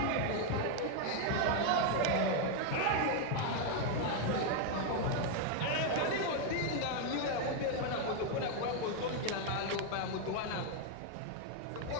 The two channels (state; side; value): different; both; correlation 0.01